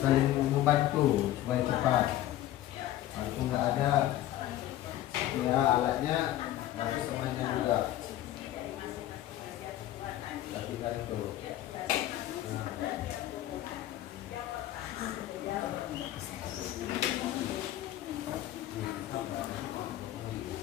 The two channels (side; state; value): right; quieter; 13.8 dB